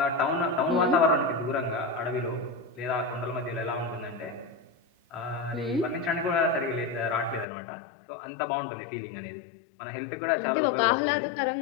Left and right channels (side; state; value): right; drops out; at 7.5 s